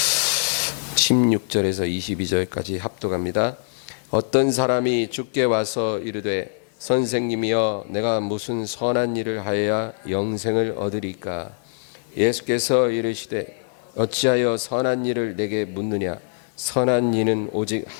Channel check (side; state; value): right; silent; digital silence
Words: (16절에서 22절까지) 합독합니다. 어떤 사람이 주께 와서 이르되 선생님이여 내가 무슨 선한 일을 하여야 영생을 얻으리까? 예수께서 이르시되 어찌하여 선한 일을 내게 묻느냐? 선한 이는 오직